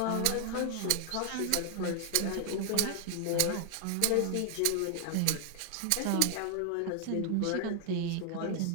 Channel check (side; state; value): both; different; correlation 0.00